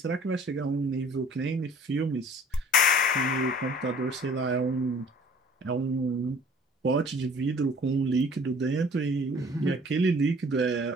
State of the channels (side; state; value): both; normal; correlation 0.51